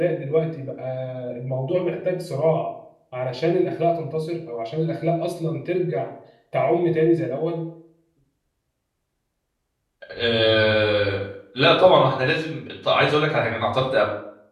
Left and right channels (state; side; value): identical; both; correlation 1.00